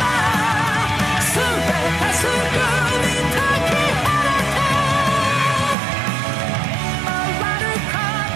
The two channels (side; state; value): left; drops out; at 5.8 s